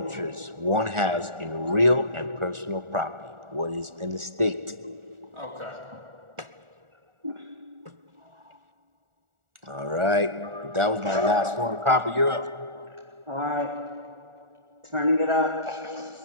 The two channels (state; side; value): late; left; 1.4 ms